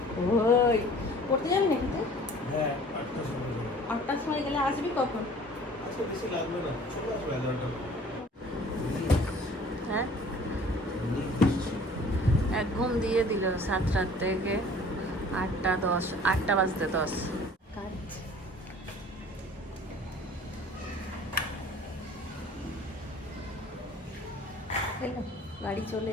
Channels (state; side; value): normal; both; correlation 0.49